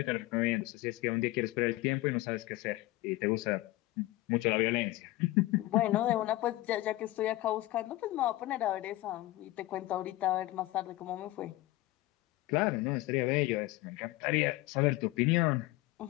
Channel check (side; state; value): right; quieter; 18.1 dB